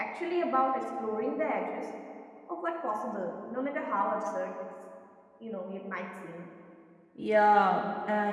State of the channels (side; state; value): both; identical; correlation 1.00